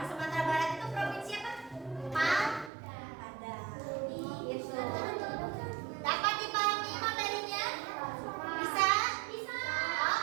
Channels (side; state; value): left; drops out; at 2.7 s